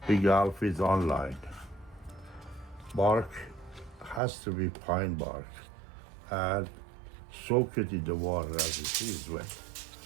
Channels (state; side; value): drops out; left; at 4.2 s